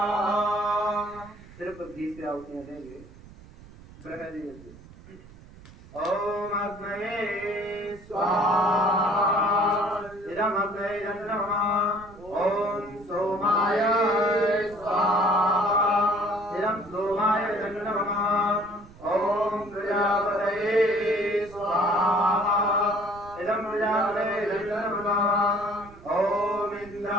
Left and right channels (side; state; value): right; noise; rumble, 20 dB below the sound